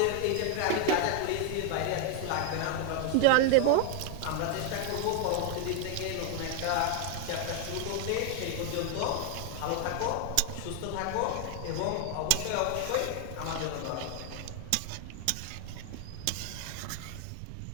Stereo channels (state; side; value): different; both; correlation 0.00